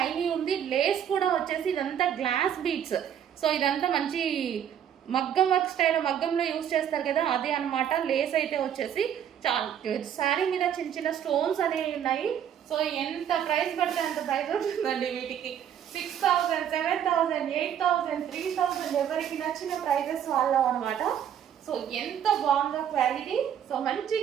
ఉంది. లేస్ కూడా వచ్చేసి ఇదంతా గ్లాస్ బీడ్స్. సో ఇదంతా మంచి మగ్గం వర్క్ స్టైల్, మగ్గంలో యూజ్ చేస్తారు కదా అదే అనమాట. లేస్ అయితే వచ్చేసి చాలా శారీ మీద చిన్న చిన్న స్టోన్స్ అనేవి ఉన్నాయి. సో ఎంత ప్రైస్ పడితే అంత ప్రైస్ ఉంటుందండి వీటికి. 6000, 7000, 8000, 3000 ఎవరికి నచ్చిన ప్రైజెస్ వాళ్ళం అనమాట. సో ఎంత బాగుందో క్వాలిటీ. సో మంచి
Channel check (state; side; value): quieter; left; 9.4 dB